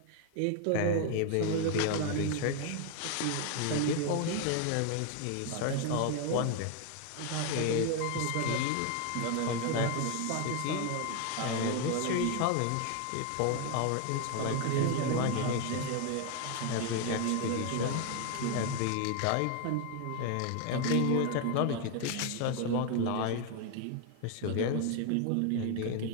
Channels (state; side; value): different; both; correlation 0.01